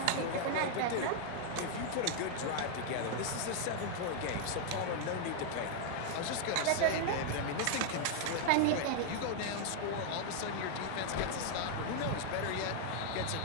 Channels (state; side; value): different; both; correlation 0.00